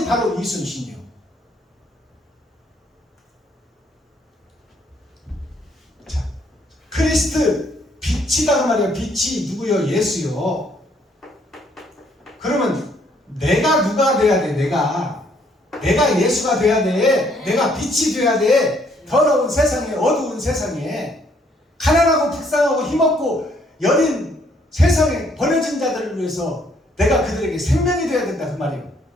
바로 이순신이요. 자, 크리스트 빛이다 그 말이야. 빛이 누구요? 예수요. 누가 돼야 돼? 내가 예수가 돼야 돼. 내가 빛이 돼야 돼. 더러운 세상에, 어두운 세상에, 가난하고 불쌍하고 힘없고 여린 세상에 버려진 자들을 위해서 내가 그들에게 생명이 되어야 된다 그 말이에요.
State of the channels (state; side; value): normal; both; correlation 0.67